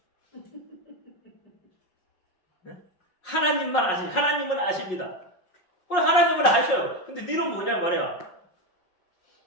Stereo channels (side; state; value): right; late; 5.5 ms